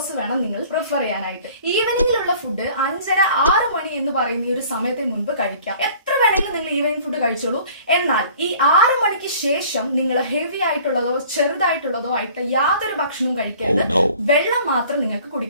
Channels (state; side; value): inverted; both; correlation -0.50